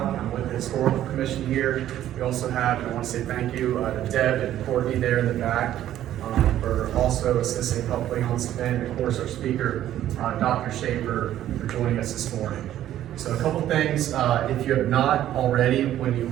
I'm with the Historical Commission here. We also have, and I want to say thank you to Deb and Courtney there in the back for also assisting helping on this event. And of course, our speaker, Dr. Schaefer, for joining us this morning. So a couple things, if you have not already, when you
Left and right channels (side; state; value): left; quieter; 12.3 dB